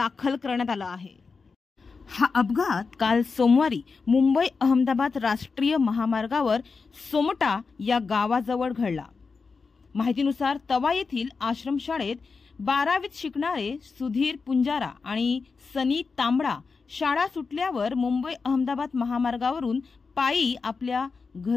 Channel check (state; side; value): quieter; right; 4.7 dB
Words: करण्यात आला आहे। हा अपघात काल सोमवारी मुंबई अहमदाबाद राष्ट्रीय महामार्गावर सोमटा या गावाजवळ घडला। माहितीनुसार तवा येथील आश्रमशाळेत 12वीत शिकणारे सुधीर पुंजारा आणि सनी तांबडा शाळा सुटल्यावर मुंबई अहमदाबाद महामार्गावरून पायी आपल्या